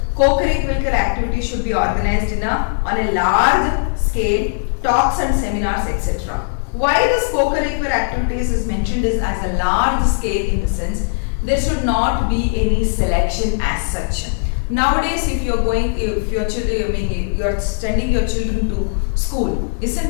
Co-curricular activities should be organized on a large scale, talks and seminars, etc. Why this co-curricular activities is mentioned is as a large scale in the sense there should not be any selection as such. Nowadays, if you are sending your children to school,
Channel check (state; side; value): silent; right; digital silence